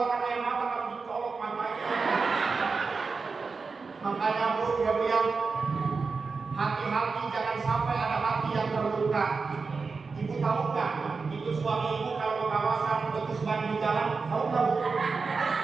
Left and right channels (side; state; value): left; quieter; 4.6 dB